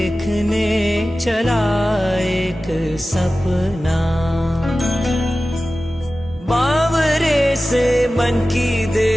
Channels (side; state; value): both; normal; correlation 0.95